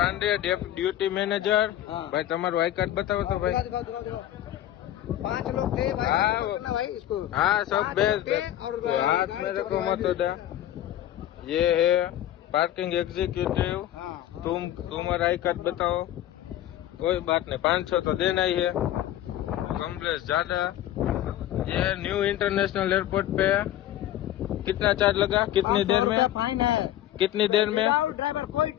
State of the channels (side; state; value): right; quieter; 12.8 dB